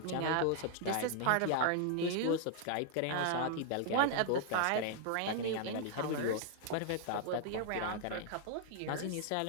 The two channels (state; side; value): different; both; correlation -0.01